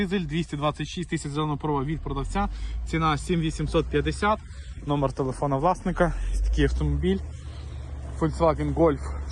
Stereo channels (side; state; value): both; identical; correlation 1.00